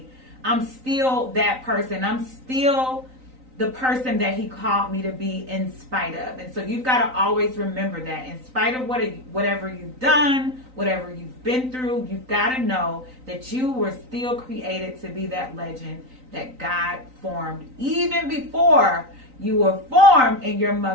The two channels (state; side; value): late; left; 3.9 ms